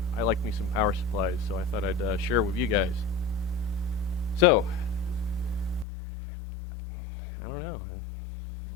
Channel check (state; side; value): drops out; right; at 5.9 s